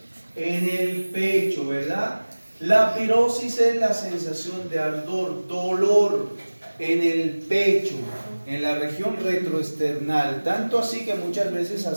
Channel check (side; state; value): both; inverted; correlation -1.00